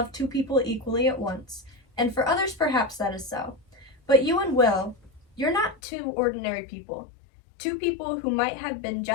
two people equally at once, and for others perhaps that is so. But you and Will, you're not two ordinary people. Two people who might have been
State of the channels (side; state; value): right; drops out; at 5.8 s